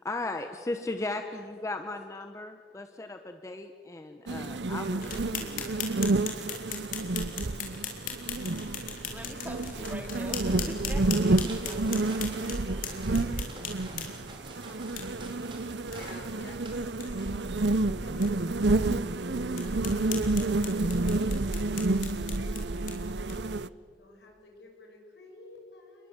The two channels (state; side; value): normal; both; correlation 0.57